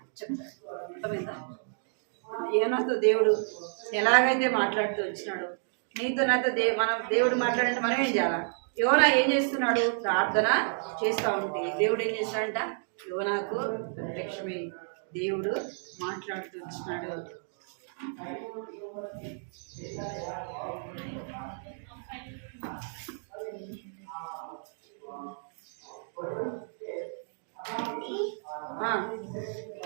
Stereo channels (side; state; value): left; silent; digital silence